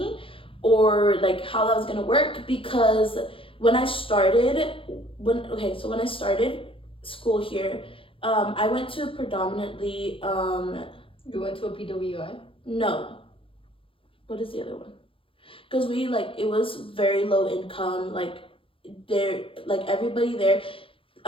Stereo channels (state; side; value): late; right; 0.26 ms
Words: or like how that was gonna work. Because when I started school here, I went to predominantly You went to a PWI? No. What is the other one? Because it was very low income. Like, everybody there.